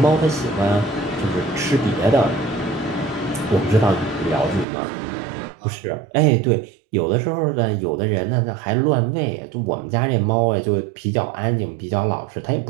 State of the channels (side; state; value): left; drops out; at 4.7 s